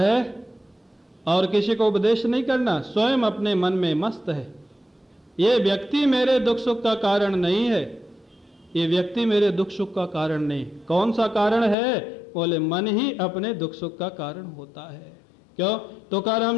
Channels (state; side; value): drops out; right; at 11.8 s